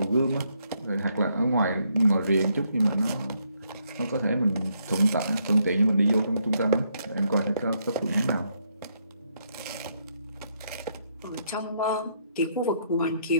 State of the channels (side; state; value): both; inverted; correlation -0.74